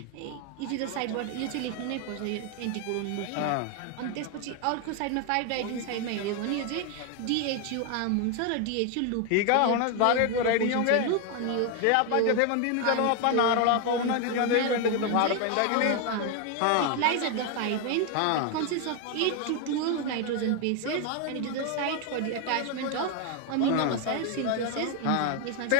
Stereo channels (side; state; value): both; different; correlation 0.01